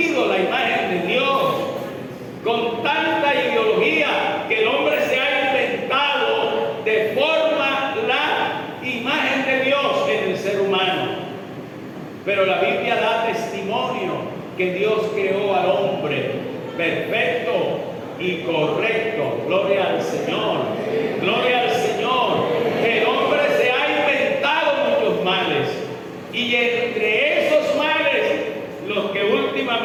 la imagen de Dios con tanta ideología que el hombre se ha inventado de forma la imagen de Dios en el ser humano. Pero la Biblia da testimonio que Dios creó al hombre perfecto y correcto. Gloria al Señor. Gloria al Señor. Que el hombre se ha inventado muchos males. Y entre esos males, los que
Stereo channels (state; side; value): identical; both; correlation 1.00